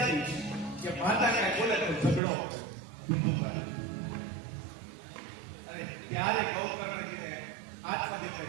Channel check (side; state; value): left; drops out; at 2.2 s